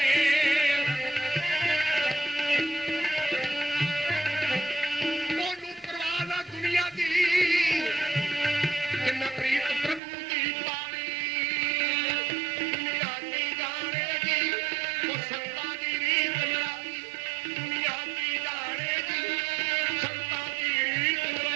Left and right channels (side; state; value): left; drops out; at 10.0 s